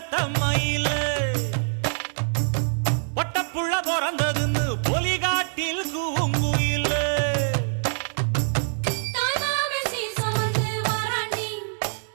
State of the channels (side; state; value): left; silent; digital silence